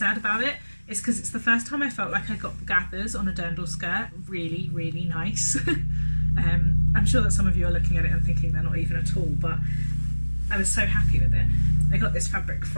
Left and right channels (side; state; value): both; inverted; correlation -1.00